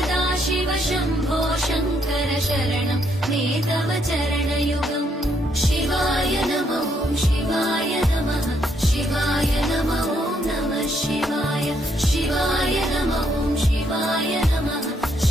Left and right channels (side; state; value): both; normal; correlation 0.73